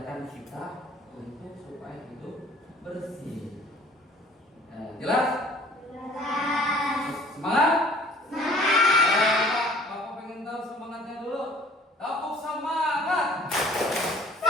kita untuk supaya hidup bersih. Jelas? Semangat? Bapak pengen tahu semangatnya dulu. Tepuk semangat.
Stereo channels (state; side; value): normal; both; correlation 0.52